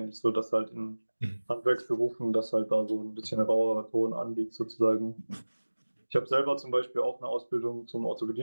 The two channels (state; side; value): inverted; both; correlation -1.00